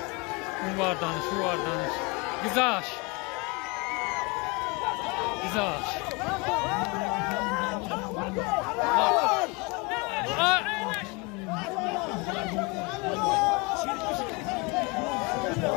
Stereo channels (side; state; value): right; quieter; 28.4 dB